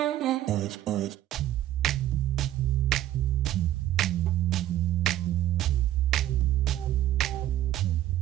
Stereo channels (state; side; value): quieter; left; 13.2 dB